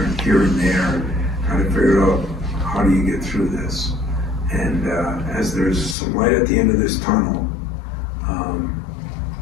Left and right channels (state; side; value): drops out; right; at 6.0 s